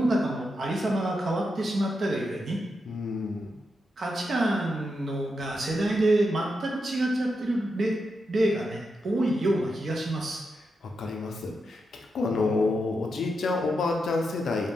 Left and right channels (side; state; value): both; normal; correlation 0.85